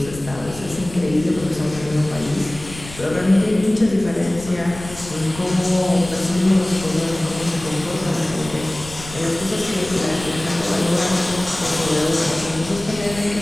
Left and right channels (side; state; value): left; noise; rumble, 15 dB below the sound